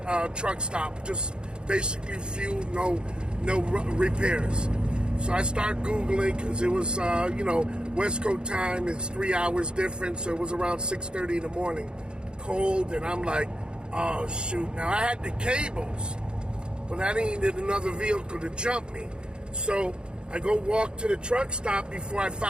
truck stop. Just basically fuel, no repairs. So I start Googling because it was, West Coast time. It's 3 hours different, so it was around 6:30 in the morning. Cold, and I'm like, oh shoot. Now I had the cables, but I needed another vehicle to jump me. So I go walk to the truck stop before I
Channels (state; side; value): late; left; 0.050 ms